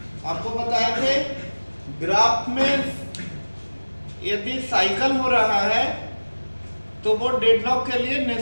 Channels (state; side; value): inverted; both; correlation -1.00